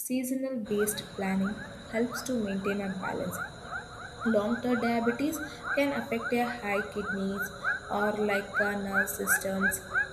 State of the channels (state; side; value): identical; both; correlation 1.00